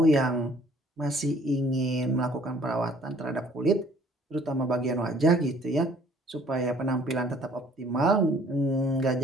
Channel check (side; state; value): both; normal; correlation 0.58